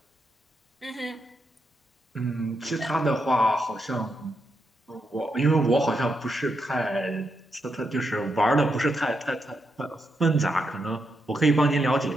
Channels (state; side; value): normal; both; correlation 0.83